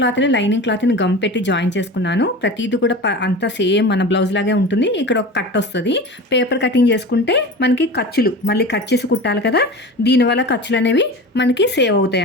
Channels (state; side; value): normal; both; correlation 0.32